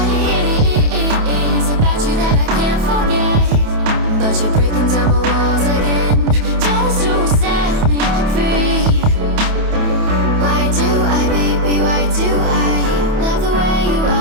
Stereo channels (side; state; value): left; late; 28 ms